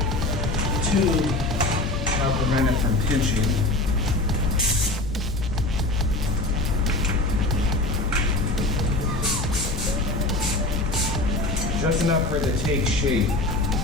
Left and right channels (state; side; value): noise; left; rumble, 5 dB below the sound